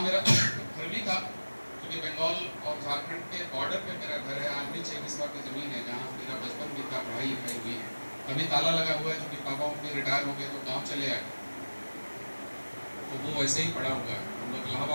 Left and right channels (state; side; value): inverted; both; correlation -1.00